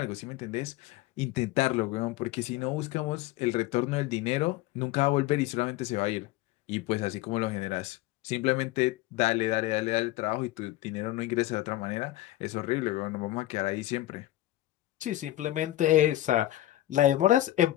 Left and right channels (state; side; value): quieter; right; 15.7 dB